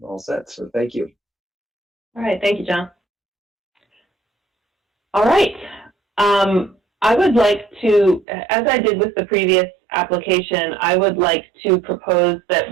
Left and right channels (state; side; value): drops out; left; at 8.2 s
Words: all set. So thank you. All right. Thank you, John. All right. I would like to, as I did with the previous application, I would like to propose that